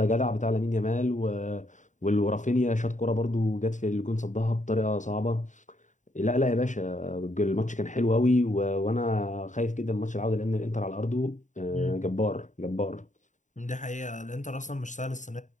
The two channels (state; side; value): late; right; 0.36 ms